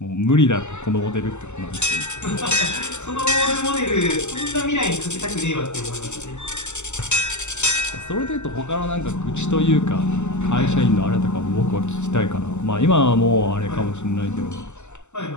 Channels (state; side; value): late; right; 0.83 ms